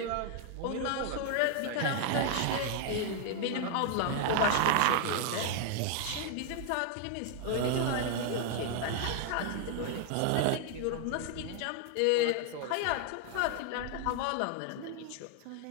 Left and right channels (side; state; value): both; different; correlation 0.00